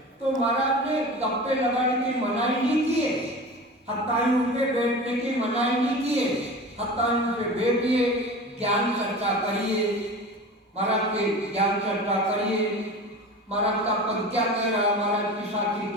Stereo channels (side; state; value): both; normal; correlation 0.34